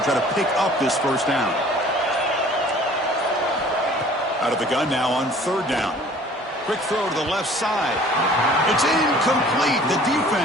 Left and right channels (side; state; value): both; normal; correlation 0.50